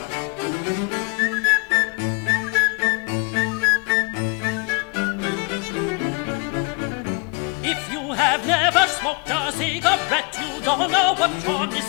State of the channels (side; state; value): right; quieter; 32.0 dB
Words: If you have never smoked a cigarette, you don't know what you're